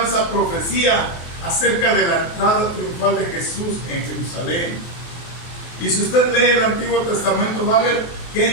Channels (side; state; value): right; late; 23 ms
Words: esa profecía acerca de la entrada triunfal de Jesús en Jerusalén. Y si usted lee el Antiguo Testamento, va a ver que